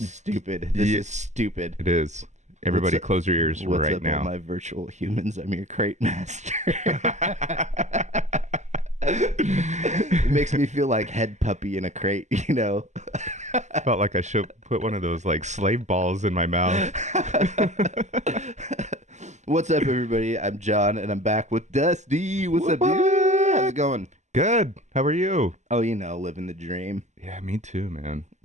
This is stupid. It is. Everybody, close your ears what's right up, now. All my virtual humans? I'm your crate master. It makes me feel like head puppy in a crate, you know. Felt like I should put one of those like slave balls in my mouth. What's up, everybody? I'm Jon, and I'm back with Dusty. What's up, dude? How's it going? Good. How are you? Oh, you know, living the dream. Yeah, me too, man.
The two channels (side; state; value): left; late; 0.34 ms